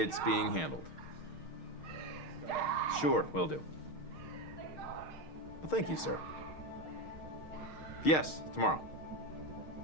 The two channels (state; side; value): late; right; 6.5 ms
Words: being handled. Sure, will do. Well, thank you, sir. Yes, tomorrow.